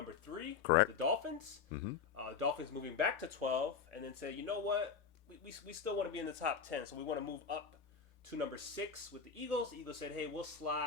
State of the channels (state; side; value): quieter; right; 6.1 dB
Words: 3. Correct. The Dolphins. Mm-hmm. Dolphins moving back to 12 and then say, you know what? We still want to be in the top 10, so we want to move up to number 6 with the Eagles. The Eagles said, hey, we'll